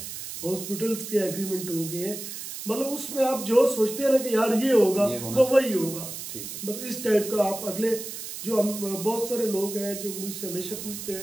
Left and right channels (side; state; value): right; noise; hiss, 9 dB below the sound